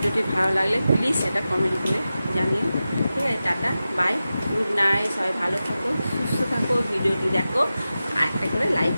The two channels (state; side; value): inverted; both; correlation -0.93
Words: ভালো লাগলে প্লিজ সেটা কমেন্ট করে জানিও, ঠিক আছে। টাটা, বাই, গুড নাইট, সবাই ভালো থাকো, সুস্থ থাকো, ভিডিওটি দেখো, আর একটা করে লাইক